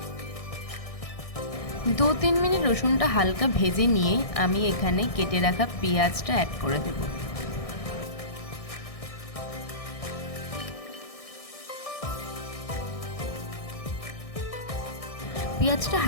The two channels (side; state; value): right; late; 1.6 ms